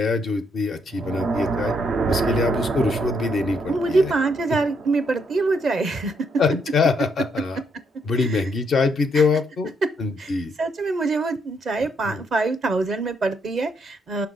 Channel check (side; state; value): both; normal; correlation 0.74